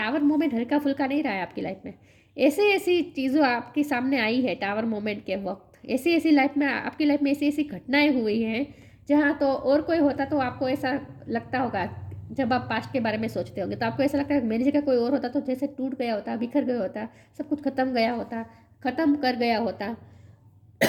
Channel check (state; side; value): identical; both; correlation 1.00